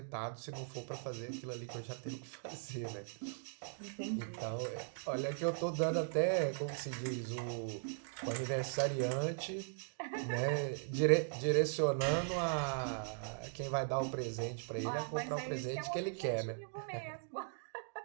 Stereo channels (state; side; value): silent; left; digital silence